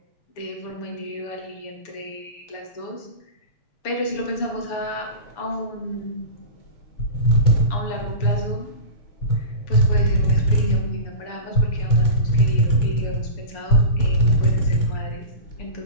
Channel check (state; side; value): late; right; 6.9 ms